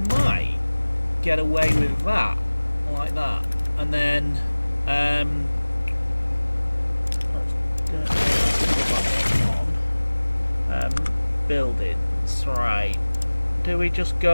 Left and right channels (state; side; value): inverted; both; correlation -1.00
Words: might get away with that, like that, and then let's put that one on. Buildings, right? Do we just